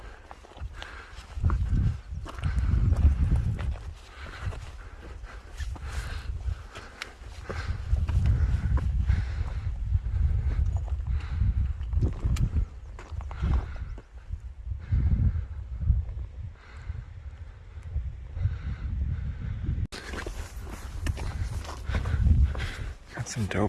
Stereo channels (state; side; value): identical; both; correlation 1.00